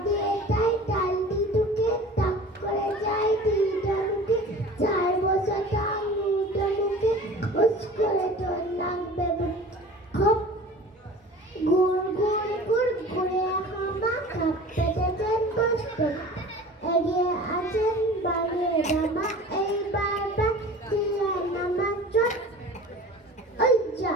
দিয়ে যায় ডাল দি ঢুকে, টাক করে যায় দিদা ঢুকে, 4 বছর তার মুদো মুখে, উস করে তোর নাক বেবুট খপ, গুড় গুড় গুড় গুড়ে হামা খাপ পেটেছেন কষ্ট, এগিয়ে আছেন বাড়িয়ে জামা, এইবার দিয়ে নামা চট, ওই যা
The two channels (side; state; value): both; normal; correlation 0.41